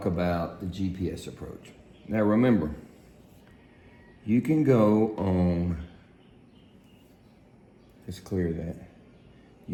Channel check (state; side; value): identical; both; correlation 1.00